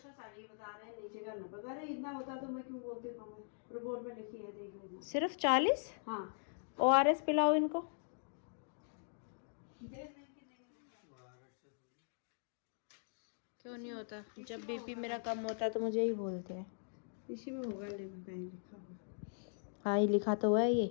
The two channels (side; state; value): right; silent; digital silence